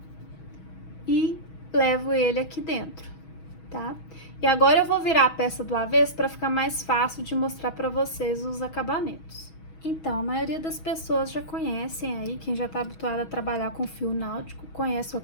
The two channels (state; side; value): late; right; 6.2 ms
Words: E levo ele aqui dentro, tá? E agora eu vou virar a peça do avesso para ficar mais fácil de mostrar para vocês os acabamentos. Então, a maioria das pessoas já conhecem aí, quem já tá habituado a trabalhar com fio náutico, conhece o